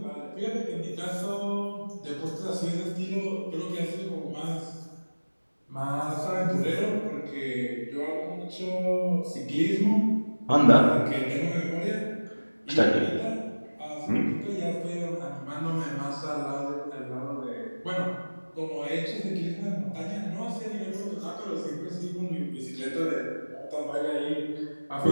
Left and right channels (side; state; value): both; inverted; correlation -1.00